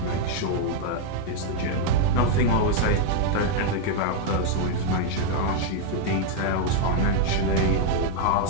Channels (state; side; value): different; both; correlation 0.00